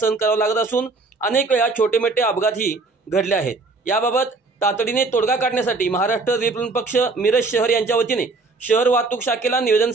करावा लागत असून अनेक वेळा छोटे मोठे अपघातही घडले आहेत। याबाबत तातडीने तोडगा काढण्यासाठी महाराष्ट्र रिपब्लिकन पक्ष मिरज शहर यांच्या वतीने शहर वाहतूक शाखेला निवेदन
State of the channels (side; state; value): left; quieter; 3.8 dB